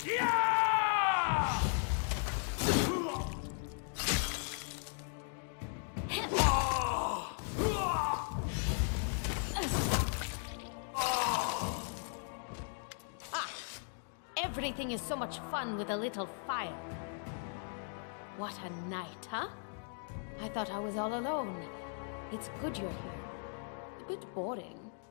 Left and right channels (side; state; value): right; silent; 53 dB below the other